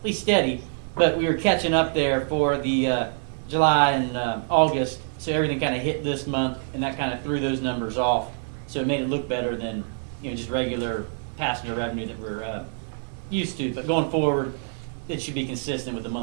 least steady, but we were catching up there for the July and August, so everything kind of hit this month, and that kind of threw those numbers off. So it made it look better than just regular passenger revenue that we're used to. But going forward, it should be consistent with the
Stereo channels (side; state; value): left; silent; 61 dB below the other